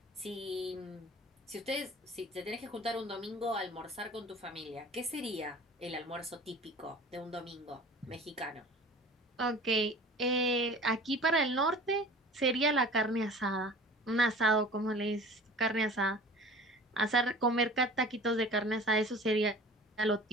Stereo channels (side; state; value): both; normal; correlation 0.42